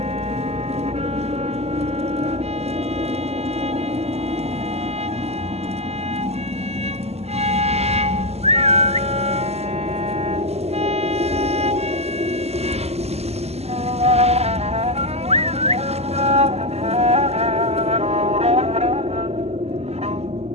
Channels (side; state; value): left; late; 0.30 ms